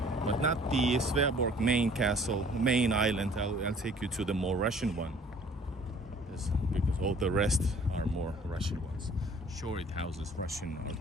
but not the Sveaborg main castle, main island. I'll take you to the more Russian one. Because all the rest are more Russian ones. Sure, it houses Russian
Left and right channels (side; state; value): both; normal; correlation 0.53